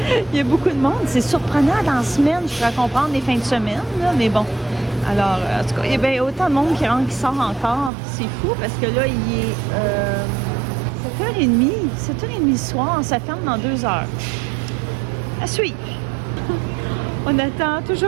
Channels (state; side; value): drops out; left; at 7.9 s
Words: il y a beaucoup de monde. C'est surprenant dans la semaine, je pourrais comprendre les fins de semaine, là, mais bon. Alors, en tout cas, il y a bien autant de monde qui sort encore. C'est fou parce que là, il est 7h30 le soir. Ça ferme dans 2 heures. À suivre. On attend